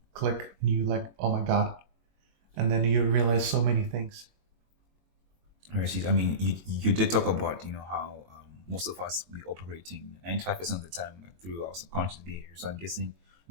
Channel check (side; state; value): left; late; 21 ms